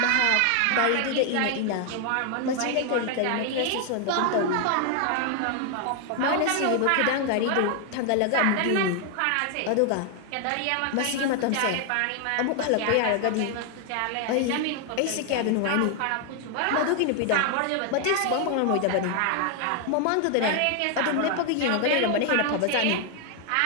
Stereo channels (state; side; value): different; both; correlation 0.00